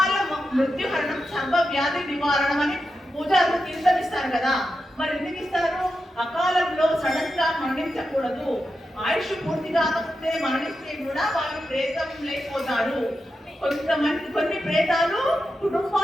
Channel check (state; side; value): normal; both; correlation 0.89